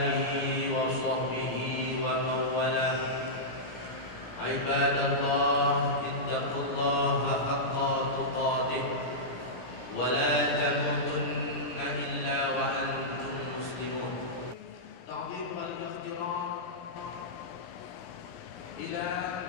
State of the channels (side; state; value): right; late; 17 ms